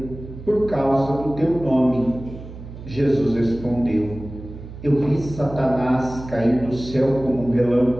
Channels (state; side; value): noise; right; hum, 13 dB below the sound